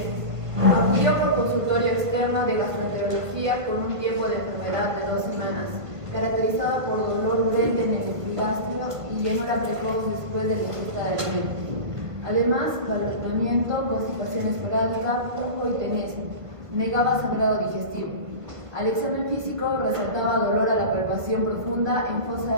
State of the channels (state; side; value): late; left; 1.4 ms